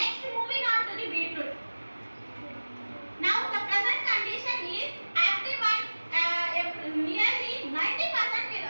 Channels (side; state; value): both; inverted; correlation -1.00